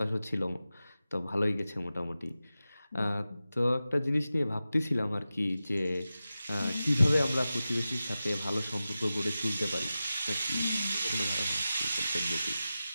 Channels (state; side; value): inverted; both; correlation -0.94